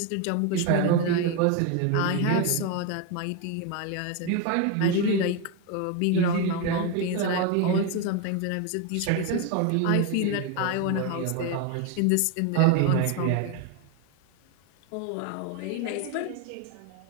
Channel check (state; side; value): different; both; correlation 0.02